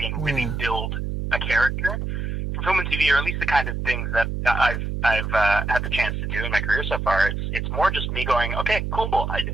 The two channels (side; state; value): right; noise; hum, 3 dB below the sound